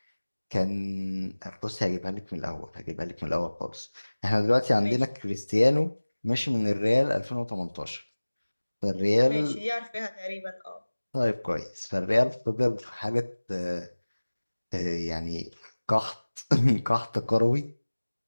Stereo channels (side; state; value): both; inverted; correlation -1.00